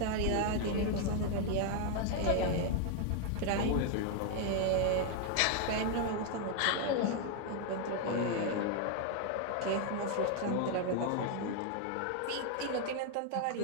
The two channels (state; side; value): different; both; correlation 0.00